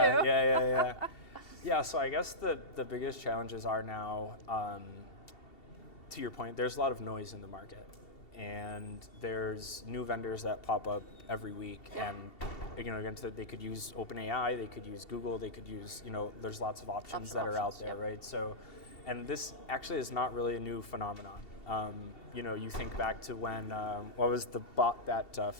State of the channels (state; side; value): late; right; 2.7 ms